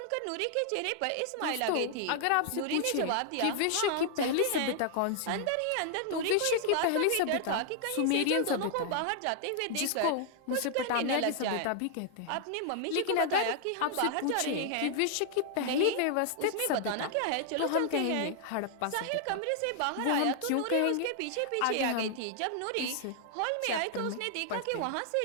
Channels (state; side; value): different; both; correlation 0.00